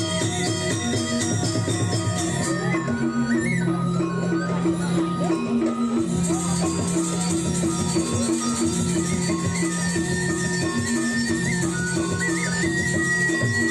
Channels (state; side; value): identical; both; correlation 1.00